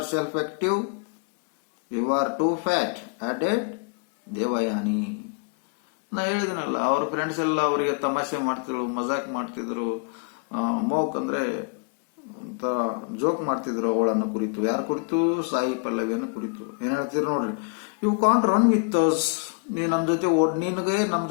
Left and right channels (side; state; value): right; quieter; 36.7 dB